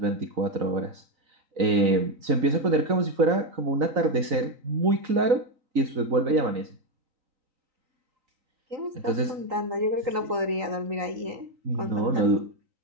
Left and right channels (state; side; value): late; left; 3.9 ms